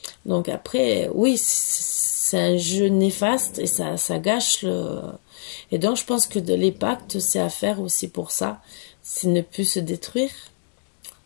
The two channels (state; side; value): silent; right; digital silence